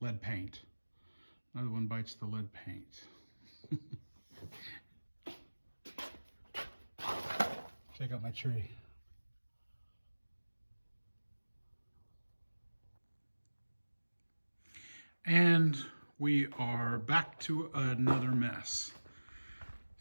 lead paint. Another one bites the lead paint. Check out my tree. And we are back to another mess.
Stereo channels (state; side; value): inverted; both; correlation -1.00